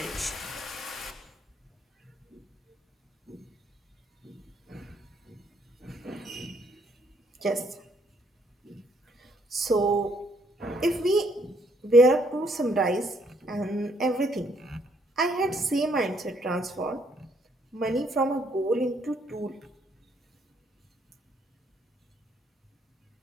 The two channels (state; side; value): normal; both; correlation 0.69